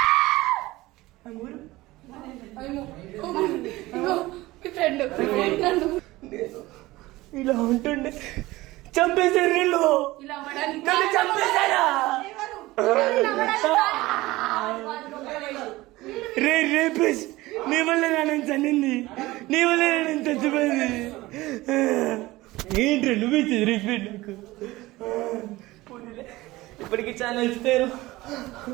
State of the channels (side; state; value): left; quieter; 19.0 dB